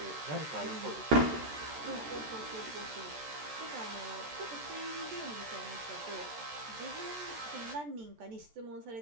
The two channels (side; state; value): left; late; 14 ms